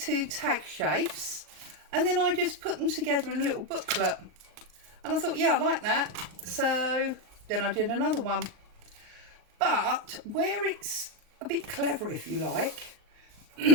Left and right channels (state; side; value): late; left; 39 ms